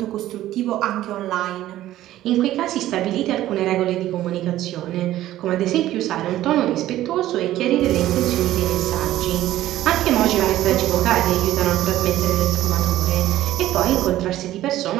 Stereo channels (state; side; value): quieter; left; 14.1 dB